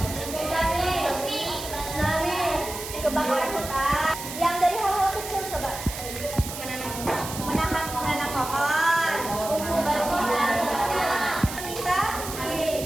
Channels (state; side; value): noise; right; hiss, 9 dB below the sound